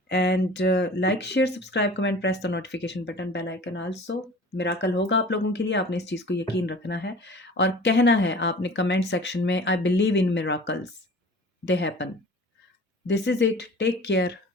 and like, share, subscribe, comment, press the notification button, bell icon also. Miracle होगा आप लोगों के लिए, आपने इस चीज़ को यकीन रखना है और कहना है आपने कमेंट सेक्शन में, I believe in miracles, they happen. This is it, take care,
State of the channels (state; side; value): normal; both; correlation 0.43